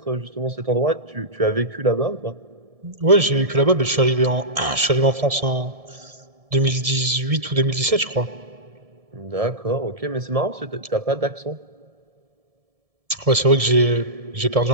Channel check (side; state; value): left; late; 1.7 ms